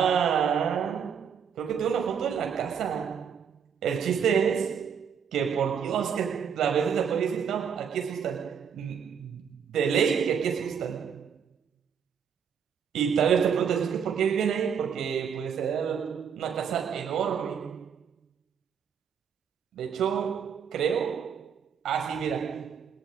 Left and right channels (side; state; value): left; quieter; 7.3 dB